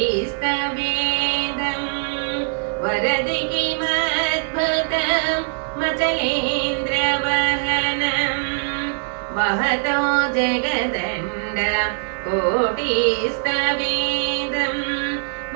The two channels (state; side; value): silent; left; 59 dB below the other